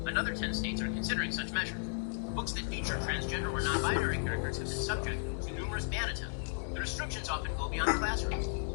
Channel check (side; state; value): right; silent; 55 dB below the other